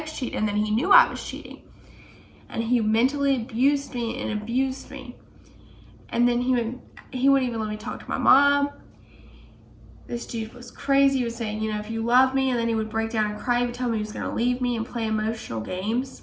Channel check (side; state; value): both; identical; correlation 1.00